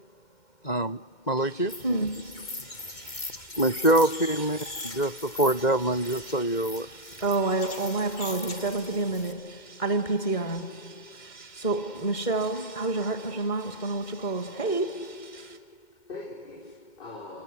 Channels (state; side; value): late; right; 2.3 ms